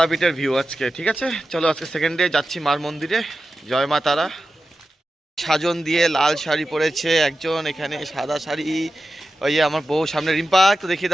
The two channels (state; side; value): normal; both; correlation 0.92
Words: ভিউ আজকে। ঠিক আছে, চলো আজকে সেকেন্ড ডে যাচ্ছি মার মন্দিরে। জয় মা তারা। সাজন দিয়ে লাল শাড়ি পরেছে একজন, এখানে সাদা শাড়ি। ওই যে আমার বউ সামনে, রিম্পা একটু দেখিয়ে